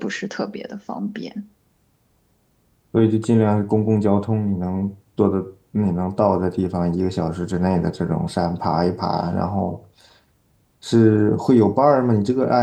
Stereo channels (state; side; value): identical; both; correlation 1.00